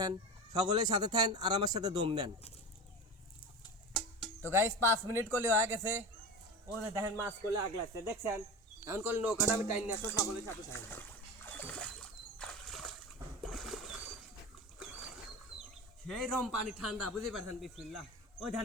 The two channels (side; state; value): both; normal; correlation 0.28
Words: সকলের সাথে থাকেন আর আমার সাথে দম দেন। তো গাইস 5 মিনিট করলে হয়ে গেছে, ও দেখেন মাছ করলে আগ লাগছে দেখছেন। এখন করলে নৌকাটা আমি টাইম নিয়ে আসবো, সকলের সাথে থাকেন। সেই রকম পানি ঠান্ডা, বুঝতে পারছেন? বিসমিল্লাহ। ওই ধান